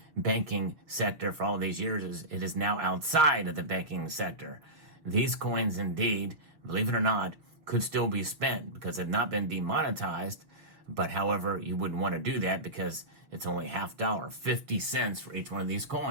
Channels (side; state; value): left; late; 6.5 ms